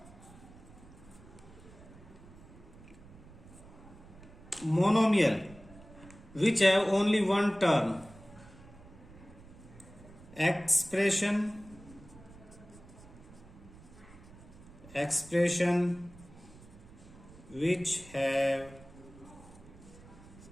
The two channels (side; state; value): right; noise; rumble, 20 dB below the sound